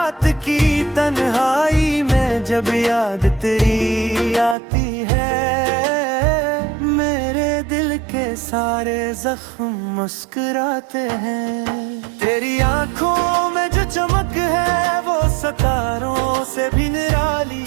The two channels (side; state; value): left; drops out; at 4.5 s